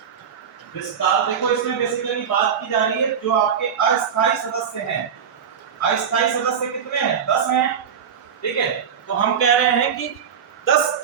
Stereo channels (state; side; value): quieter; left; 7.6 dB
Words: विस्तार। देखो इसमें बेसिकली बात की जा रही है जो आपके अस्थायी सदस्य हैं। अस्थायी सदस्य कितने हैं? 10 हैं, ठीक है। तो हम कह रहे हैं कि 10